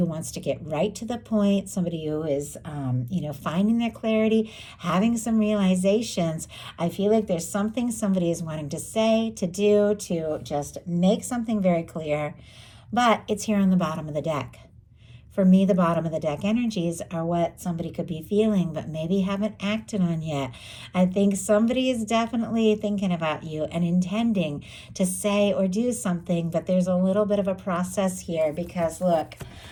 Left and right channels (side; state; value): both; identical; correlation 1.00